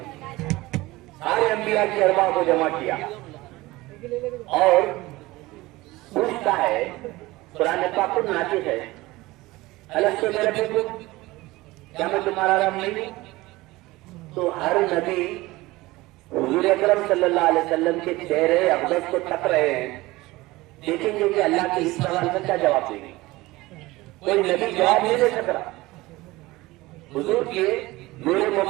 سارے انبیاء کی ارواح کو جمع کیا اور پوچھتا ہے، قرآن پاک خود ناطق ہے، الستو بربکم، کیا میں تمہارا رب نہیں ہوں؟ تو ہر نبی حضور اکرم صلی اللہ علیہ وسلم کے چہرے اقدس کو تک رہے ہیں، دیکھیں گے کہ اللہ کے اس سوال کا کیا جواب دیں گے. کوئی نبی جواب نہیں دے سک رہا. حضور کے نور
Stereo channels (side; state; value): left; quieter; 19.9 dB